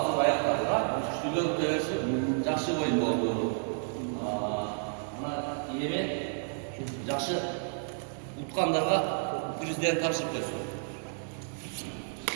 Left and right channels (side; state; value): left; silent; digital silence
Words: аяқтады. Күштілер өте жақсы ойын болды. Мына еме жақсы ұтқандарға президент тапсырып берсін.